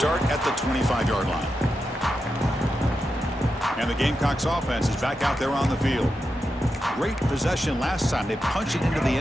at the 25-yard line. And the Gamecocks offense is back out there on the field. Great possession last time. They punched it into the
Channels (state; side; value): normal; both; correlation 0.88